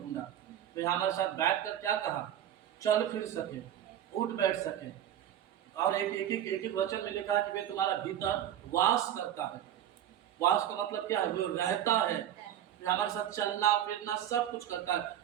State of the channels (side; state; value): left; quieter; 11.1 dB